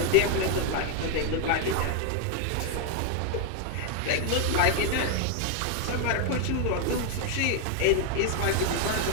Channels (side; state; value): both; different; correlation 0.01